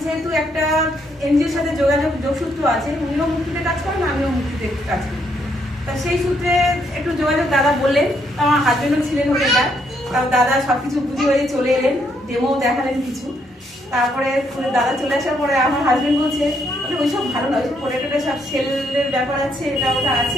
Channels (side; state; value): both; normal; correlation 0.73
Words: যেহেতু একটা এনজিওর সাথে যোগসূত্র আছে, উনিও মুক্তিতে কাজ করেন, আমিও মুক্তিতে কাজ করি, তা সেই সূত্রে একটু যোগাযোগ দাদা বললেন। আমার হাজবেন্ডও ছিলেন হোটেলটা, তাও দাদা সবকিছু বুঝে হয়ে চলে এলেন, ডেমো দেখালেন কিছু। তারপরে দাদা চলে আসার পরে আমার হাজবেন্ড বলছে ওইসব ভালো না, ওইসব পোটেটোটা সব সেলের ব্যাপার আছে, এটা ওটা